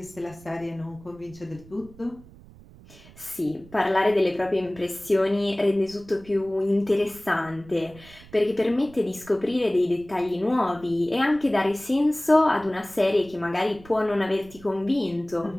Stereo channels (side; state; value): right; noise; rumble, 22 dB below the sound